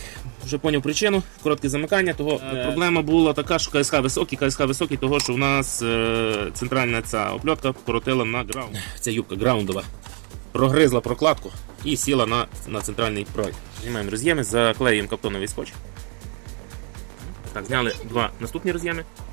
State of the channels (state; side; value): quieter; left; 38.3 dB